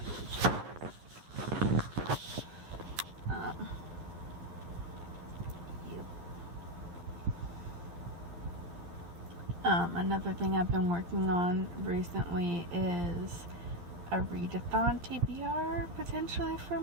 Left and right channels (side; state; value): left; late; 11 ms